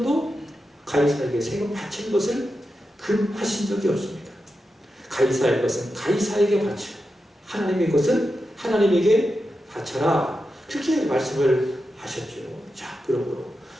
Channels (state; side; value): normal; both; correlation 0.89